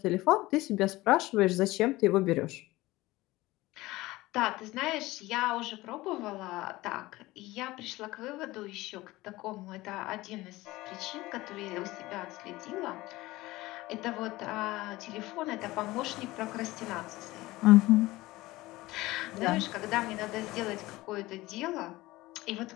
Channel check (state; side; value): quieter; right; 19.0 dB